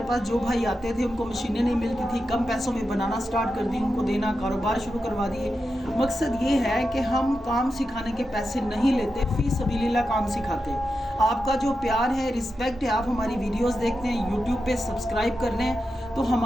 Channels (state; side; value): normal; both; correlation 0.89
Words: पास जो भाई आते थे उनको मशीनें नहीं मिलती थी, कम पैसों में बनाना स्टार्ट कर दी, उनको देना, कारोबार शुरू करवा दिए। मकसद ये है कि हम काम सिखाने के पैसे नहीं लेते, फ़ी सबीलिल्लाह काम सिखाते हैं। आपका जो प्यार है, रिस्पेक्ट है, आप हमारी वीडियोस देखते हैं, यूट्यूब पे सब्सक्राइब कर लें, तो